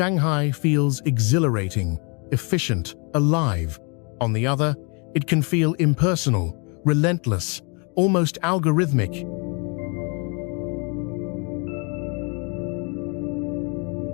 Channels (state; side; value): quieter; right; 33.9 dB